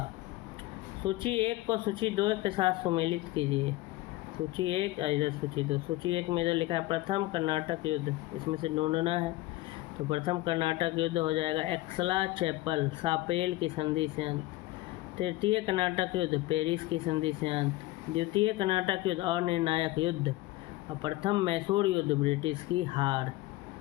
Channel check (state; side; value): quieter; right; 18.2 dB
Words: सूची 1 को सूची 2 के साथ सुमेलित कीजिए। सूची 1 इधर सूची 2। सूची 1 में इधर लिखा है प्रथम कर्नाटक युद्ध, इसमें से ढूंढना है। तो प्रथम कर्नाटक युद्ध हो जाएगा एक्सला चैपल सापेल की संधि से अंत। तृतीय कर्नाटक युद्ध पेरिस की संधि से अंत। द्वितीय कर्नाटक युद्ध अनिर्णायक युद्ध। और प्रथम मैसूर युद्ध ब्रिटिश की हार।